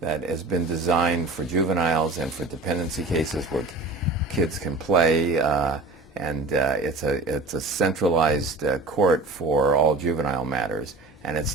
that has been designed for juveniles and for dependency cases where kids can play, and it's a centralized court for all juvenile matters,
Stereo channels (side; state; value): left; quieter; 3.4 dB